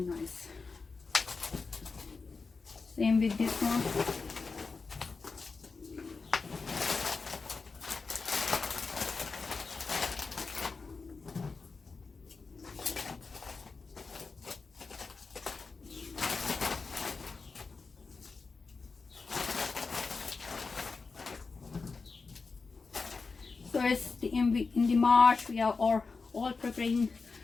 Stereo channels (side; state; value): right; quieter; 4.4 dB